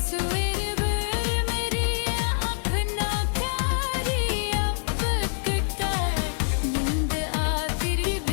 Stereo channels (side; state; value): right; silent; 58 dB below the other